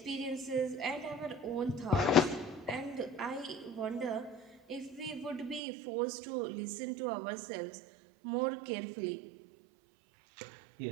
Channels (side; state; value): left; drops out; at 5.6 s